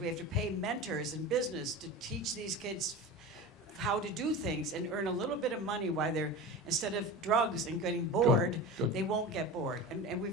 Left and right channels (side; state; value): both; normal; correlation 0.30